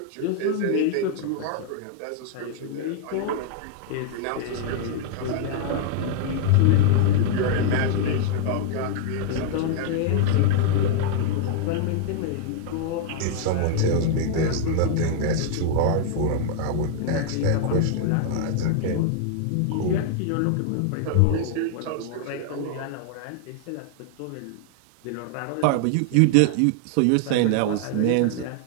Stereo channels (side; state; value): both; different; correlation 0.00